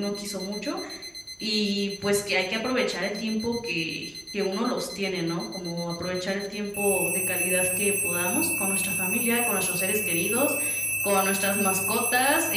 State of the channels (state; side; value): identical; both; correlation 1.00